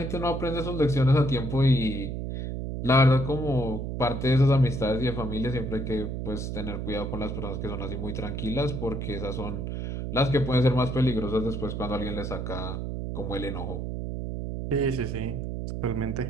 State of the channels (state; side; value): noise; right; hum, 4 dB below the sound